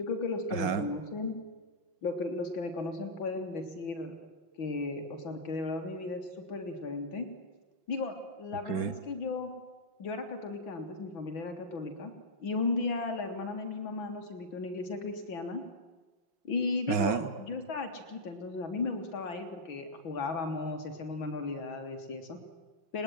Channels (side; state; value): right; late; 5.4 ms